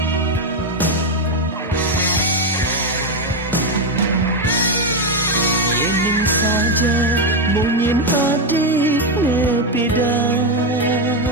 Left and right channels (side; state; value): both; normal; correlation 0.06